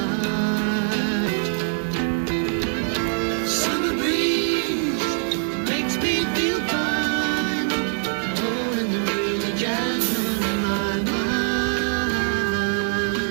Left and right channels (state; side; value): silent; left; 59 dB below the other